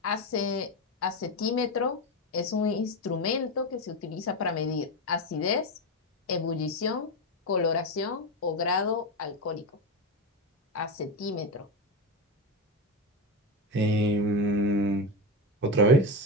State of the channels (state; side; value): normal; both; correlation 0.15